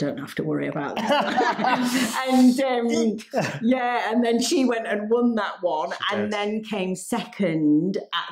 have to worry about this. And then she went and won that one, and then came second at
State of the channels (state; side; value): identical; both; correlation 1.00